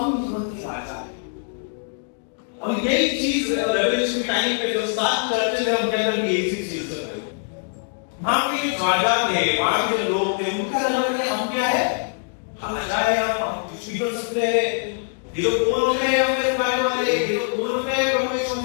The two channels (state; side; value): silent; right; digital silence